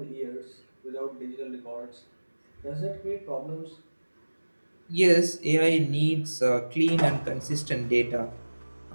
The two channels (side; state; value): both; inverted; correlation -1.00